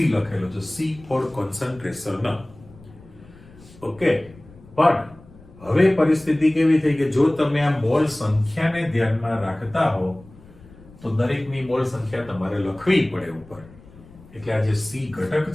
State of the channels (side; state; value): left; noise; rumble, 22 dB below the sound